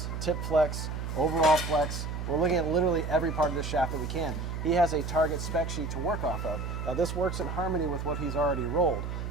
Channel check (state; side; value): noise; right; hum, 5 dB below the sound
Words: tip flex, overall flex. We're looking at literally every part of the shaft that we can. He has a target spec sheet to work off of. Now this works in harmony with what he's already rolled.